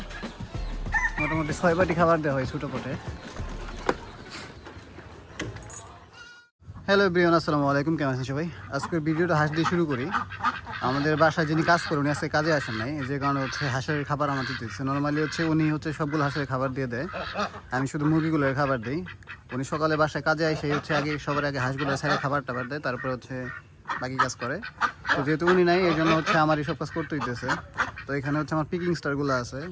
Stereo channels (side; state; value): both; identical; correlation 1.00